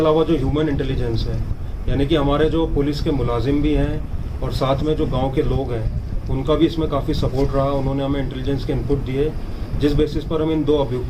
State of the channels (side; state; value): both; identical; correlation 1.00